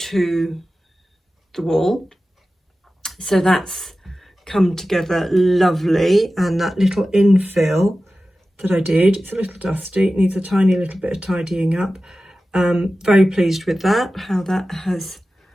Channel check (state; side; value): normal; both; correlation 0.94